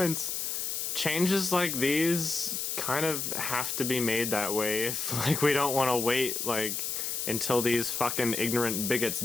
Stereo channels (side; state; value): left; noise; hiss, 2 dB below the sound